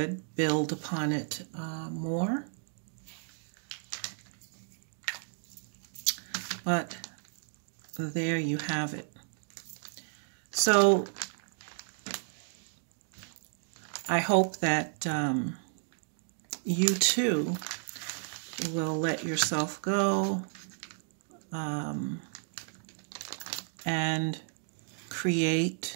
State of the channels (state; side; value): silent; left; 56 dB below the other